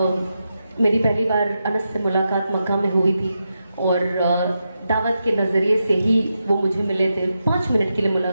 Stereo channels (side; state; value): both; inverted; correlation -0.87